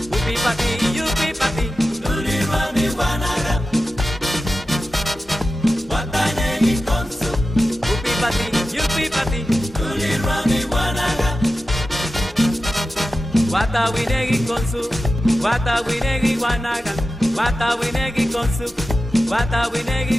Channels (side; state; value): both; normal; correlation 0.93